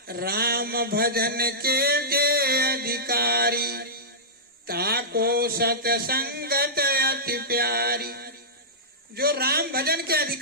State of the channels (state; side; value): normal; both; correlation -0.15